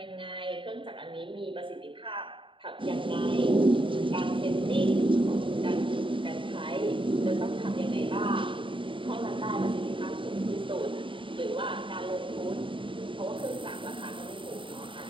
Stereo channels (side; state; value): left; late; 0.25 ms